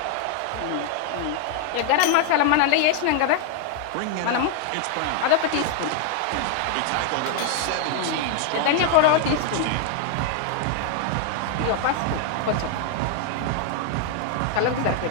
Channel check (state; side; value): different; both; correlation 0.00